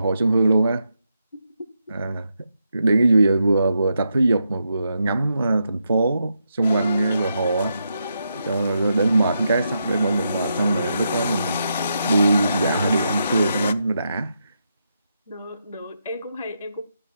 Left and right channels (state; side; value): inverted; both; correlation -0.83